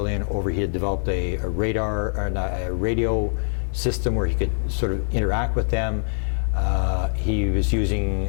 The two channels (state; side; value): silent; right; 63 dB below the other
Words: over. He had developed a radar, or a radio system where he could sort of interact with them. He was